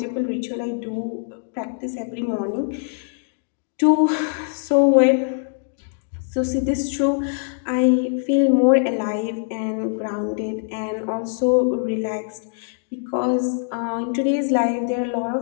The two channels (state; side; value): silent; right; digital silence